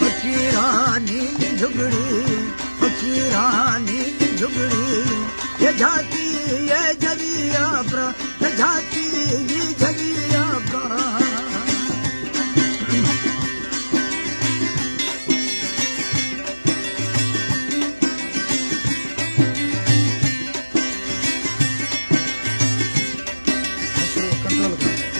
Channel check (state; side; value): inverted; both; correlation -1.00